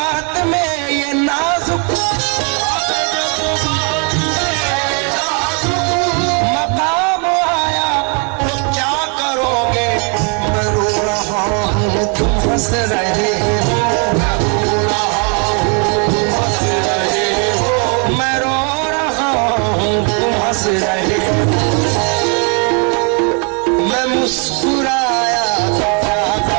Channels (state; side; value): quieter; left; 36.7 dB